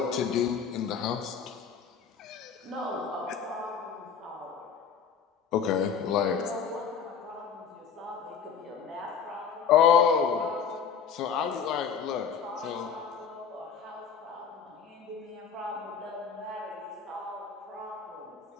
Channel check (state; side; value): quieter; right; 6.8 dB